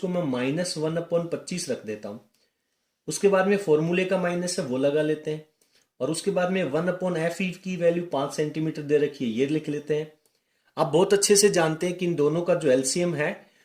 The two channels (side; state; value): both; identical; correlation 1.00